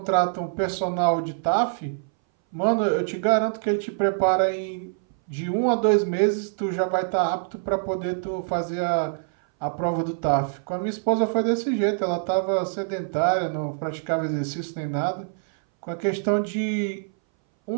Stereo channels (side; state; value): left; silent; 60 dB below the other